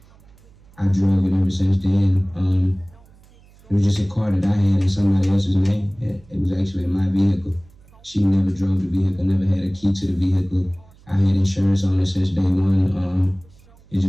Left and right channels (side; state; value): right; noise; hum, 27 dB below the sound